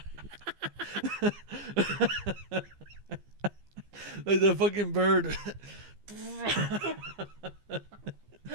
Like the fucking bird.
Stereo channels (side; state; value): left; late; 15 ms